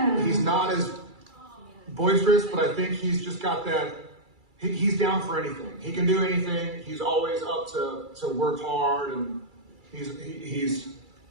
he's not as boisterous, but I think he's just got that. He's down for anything. He can do anything. He's always up to work hard, and he's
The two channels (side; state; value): left; late; 2.3 ms